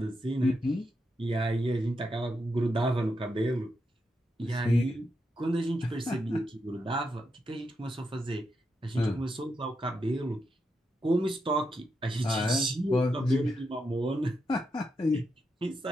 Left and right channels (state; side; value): normal; both; correlation 0.84